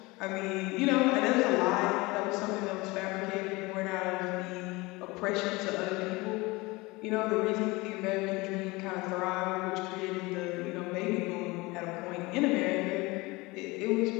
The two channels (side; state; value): right; quieter; 23.1 dB